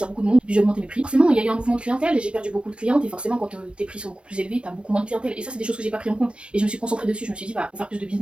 beaucoup de monde. Puis, j'ai augmenté mes prix. Forcément, il y a eu un mouvement de clientèle et j'ai perdu beaucoup de clientes. Et forcément, quand tes prix sont beaucoup plus élevés, t'as beaucoup moins de clientèle. Et ça, c'est des choses que j'ai pas pris en compte. Et je me suis concentrée dessus. Je me suis dit, bah, pour faire plus de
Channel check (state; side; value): late; left; 0.058 ms